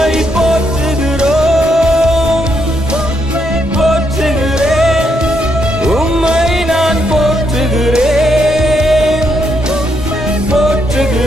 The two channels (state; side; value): normal; both; correlation 0.77